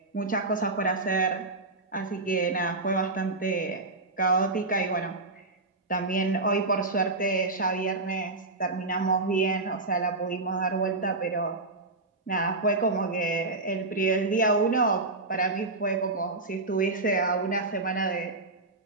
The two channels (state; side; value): quieter; left; 3.2 dB